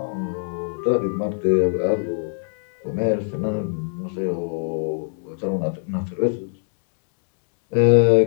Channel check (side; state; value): right; silent; 64 dB below the other